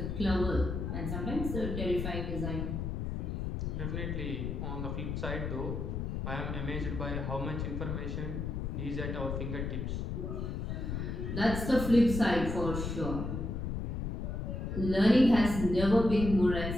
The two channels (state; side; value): noise; left; rumble, 3 dB below the sound